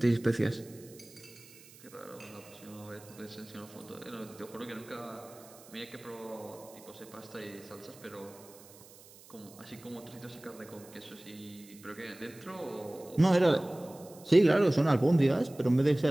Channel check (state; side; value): noise; right; hiss, 22 dB below the sound